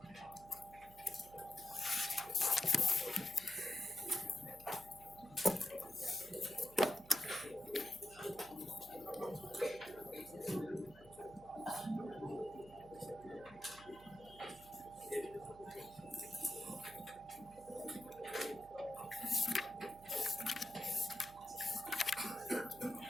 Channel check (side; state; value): right; noise; hum, 21 dB below the sound